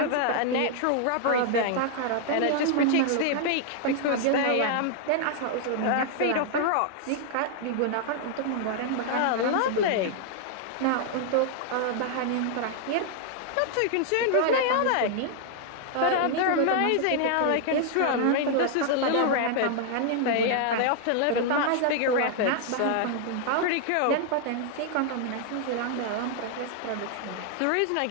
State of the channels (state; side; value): different; both; correlation 0.00